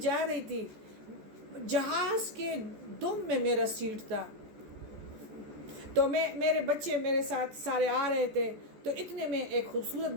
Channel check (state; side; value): late; left; 14 ms